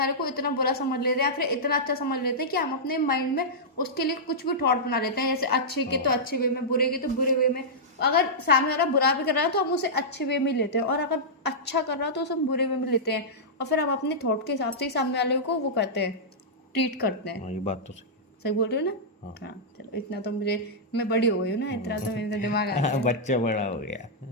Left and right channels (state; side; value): normal; both; correlation -0.11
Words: को इतना बुरा समझ लेते हैं या फिर इतना अच्छा समझ लेते हैं कि हम अपने माइंड में उसके लिए कुछ भी थॉट बना लेते हैं, जैसे अच्छे के तो अच्छे वे में, बुरे के तो बुरे वे में। अगर सामने वाला बुरा भी कर रहा है तो हम उसे अच्छे वे में लेते हैं, और अगर अच्छा कर रहा है तो उसे हम बुरे वे में लेते हैं, और फिर हम अपने थॉट के हिसाब से ही सामने वाले को वो करते हैं, ट्रीट करते हैं। ये बात तो सही बोल रही हो ना? हाँ, चलो इतना तो मुझे, मैं बड़ी हो गई हूँ ना, इतना तो मेरे दिमाग आ गया। बच्चा बड़ा हो गया।